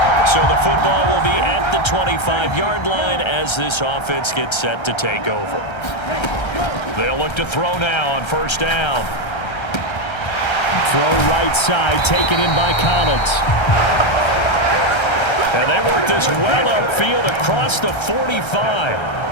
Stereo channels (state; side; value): late; right; 1.3 ms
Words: So the football will be at the 25-yard line as this offense gets set to take over. They'll look to throw now on first down. Throw right side, taken in by Collins. And they work this well upfield across the 45.